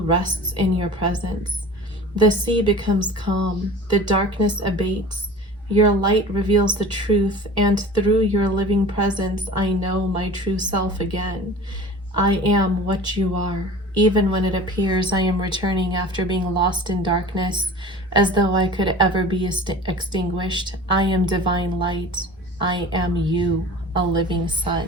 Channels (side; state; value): both; normal; correlation 0.39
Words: rests in your presence. The sea becomes calm, the darkness abates, your light reveals the truth, and through your living presence, I know my true self again. I am what you are, Even when it appears I am returning after being lost in darkness, as though I could ever be extinguished, I am divine light. I am you, a living